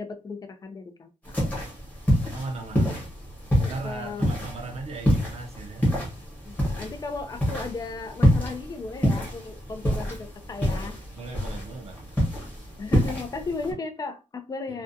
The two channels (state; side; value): normal; both; correlation 0.84